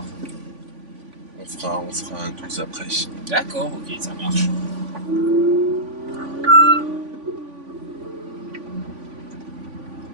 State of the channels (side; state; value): left; late; 3.5 ms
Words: on fera un 12 après. d'accord, ok, ça marche.